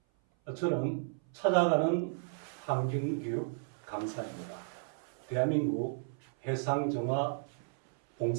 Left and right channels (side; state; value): left; silent; 55 dB below the other